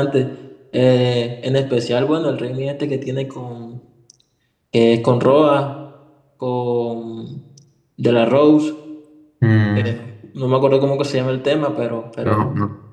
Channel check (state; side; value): identical; both; correlation 1.00